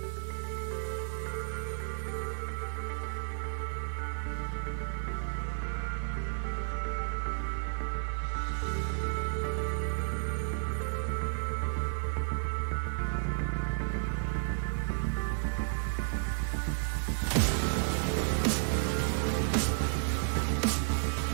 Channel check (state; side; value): silent; left; 56 dB below the other